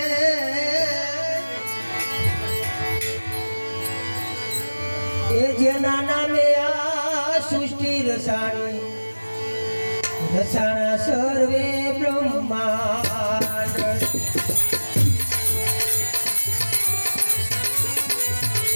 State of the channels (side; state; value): both; inverted; correlation -1.00